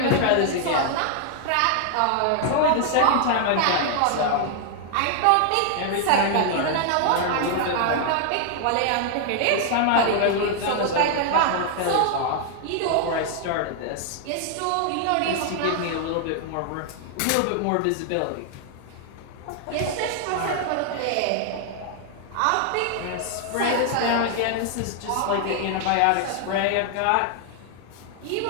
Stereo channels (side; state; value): both; different; correlation 0.00